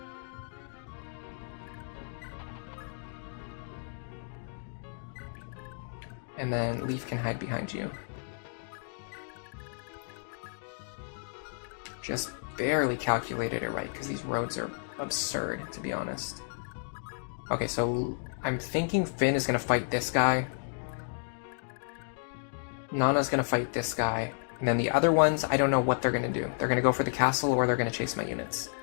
And then Leaf can hide behind you. Just barely calculated it right, because these roads are absurd, to be honest. Okay, so I'm thinking Finn is going to fight this guy. Nana's going to fight this guy. And then the other ones, I don't know what they're going to do. They're going to go for the castle, or they're going to chase my units.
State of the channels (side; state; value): right; silent; digital silence